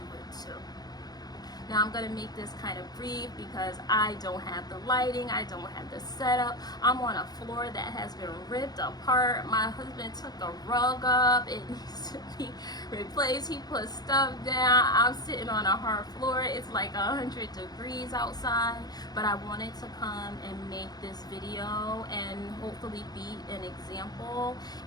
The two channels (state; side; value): late; right; 0.19 ms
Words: it too. Now I'm gonna make this kind of brief because I don't have the lighting, I don't have the setup. I'm on a floor that has been ripped apart. My husband took the rug up, it needs to be replaced. He put stuff down. I'm sitting on a hard floor. It's like 100 degrees outside, but I wanted to come and make this video and hopefully be an example